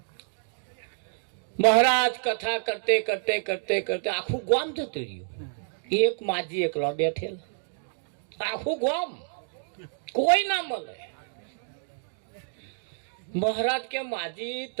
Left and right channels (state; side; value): silent; left; digital silence